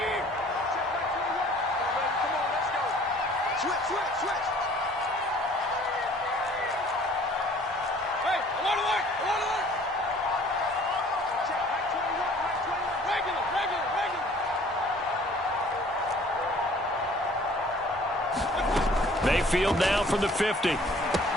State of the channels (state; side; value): normal; both; correlation 0.53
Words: Mayfield now from the 50. And